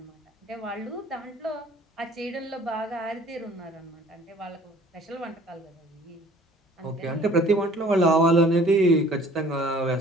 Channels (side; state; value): both; normal; correlation 0.52